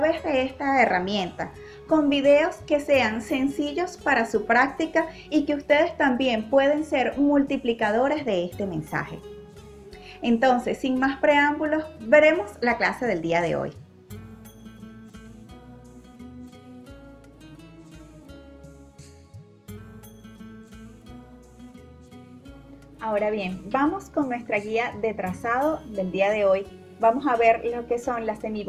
de esta herramienta, con videos que sean sencillos para su práctica y que ustedes también pueden ser multiplicadores de este mensaje. Entonces, sin más preámbulos, veremos la clase del día de hoy. Ahora bien, vamos con nuestra guía de trazado del día de hoy. Vamos a ver lo que son las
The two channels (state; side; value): identical; both; correlation 1.00